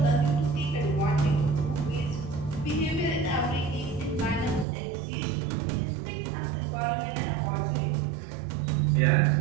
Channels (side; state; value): left; drops out; at 4.7 s